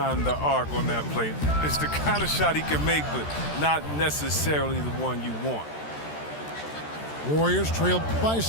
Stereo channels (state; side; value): late; right; 13 ms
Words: the arc on that play. It's the kind of shot he can make, but not necessarily the one you want. Warriors trailed by